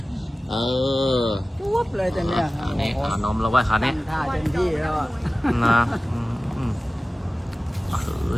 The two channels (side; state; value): both; normal; correlation 0.96